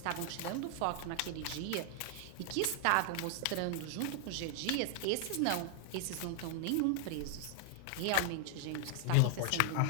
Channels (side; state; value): both; different; correlation 0.00